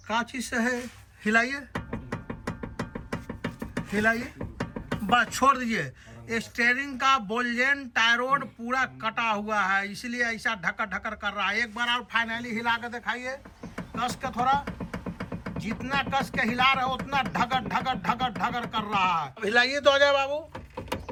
कांची से है, हिलाइए हिलाइए, बस छोड़ दीजिए। स्टीयरिंग का बोल्जेन टायरोड पूरा कटा हुआ है, इसलिए ऐसा ढकर ढकर कर रहा है। एक बार और फाइनली हिला कर दिखाइए, कस के थोड़ा, जितना कस के हिला रहे हो उतना ढगर ढगर ढगर ढगर कर रहा है। हिलाइए तो अजय बाबू,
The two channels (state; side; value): identical; both; correlation 1.00